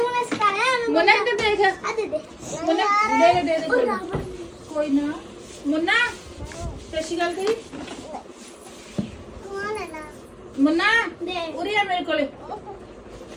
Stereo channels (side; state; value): both; identical; correlation 1.00